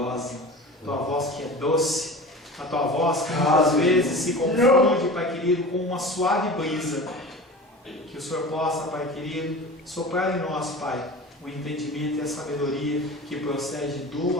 a Tua voz que é doce, a Tua voz que muitas vezes se confunde, Pai querido, com uma suave brisa. Que o Senhor possa, Pai querido, soprar em nós, Pai, o entendimento e a sabedoria que procede do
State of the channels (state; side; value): normal; both; correlation 0.35